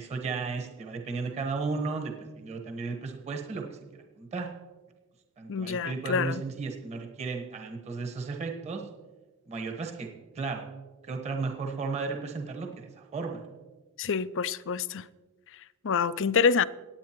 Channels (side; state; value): both; normal; correlation 0.17